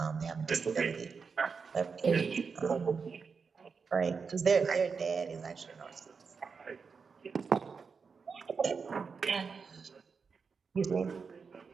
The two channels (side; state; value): left; quieter; 5.4 dB